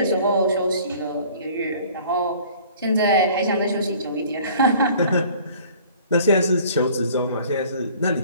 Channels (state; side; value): inverted; both; correlation -0.51